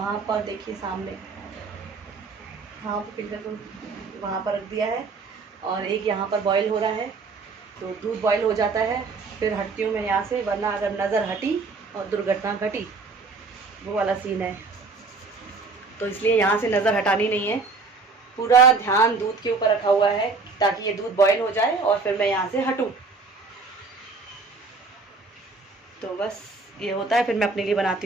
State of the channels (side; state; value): left; quieter; 4.1 dB